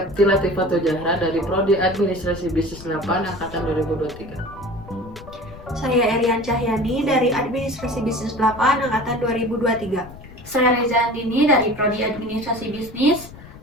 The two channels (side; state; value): left; noise; rumble, 17 dB below the sound